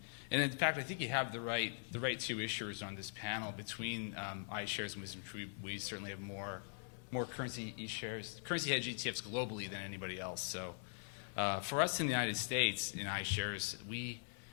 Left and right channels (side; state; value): right; silent; digital silence